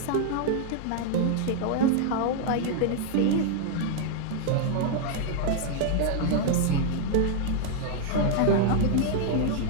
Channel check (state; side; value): different; both; correlation 0.00